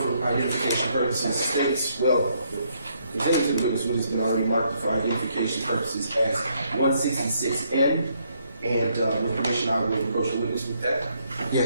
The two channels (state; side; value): inverted; both; correlation -0.72